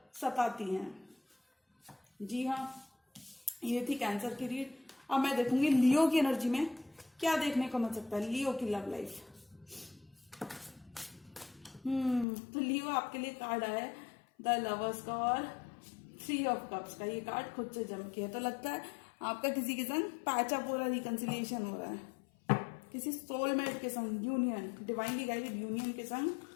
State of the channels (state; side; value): drops out; right; at 12.2 s